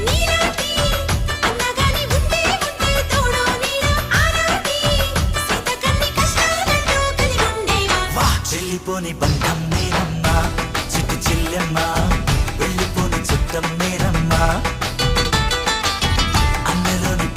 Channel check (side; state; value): both; identical; correlation 1.00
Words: వెళ్ళిపోని బంధం నేనమ్మా, చిట్టి చెల్లెమ్మ, వెళ్ళిపోని చుట్టం నేనమ్మా, అన్నలోని